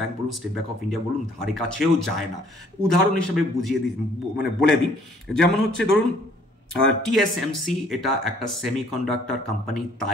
বলুন, স্টেট ব্যাংক অফ ইন্ডিয়া বলুন, ধারে কাছেও যায় না। উদাহরণ হিসেবে বলে দিই, যেমন হচ্ছে ধরুন টিএসএমসি, এটা একটা সেমিকন্ডাক্টর কোম্পানি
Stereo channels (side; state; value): both; normal; correlation 0.60